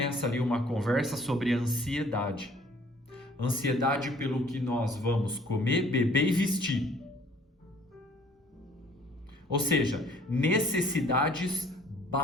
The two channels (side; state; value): both; normal; correlation 0.56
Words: ali uma conversa sobre ansiedade. Ansiedade pelo que nós vamos comer, beber e vestir. Ou seja, necessidades